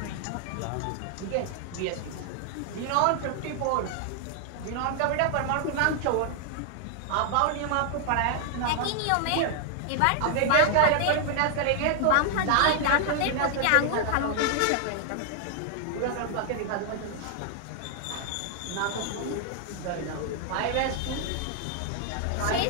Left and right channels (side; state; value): both; different; correlation 0.00